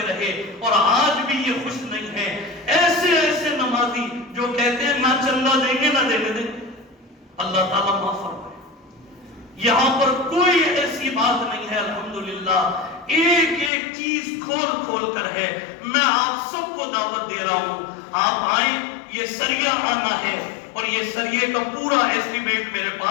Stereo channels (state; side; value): drops out; right; at 13.7 s